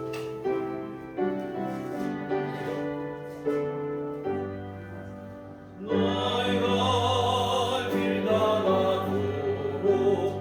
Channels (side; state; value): both; identical; correlation 1.00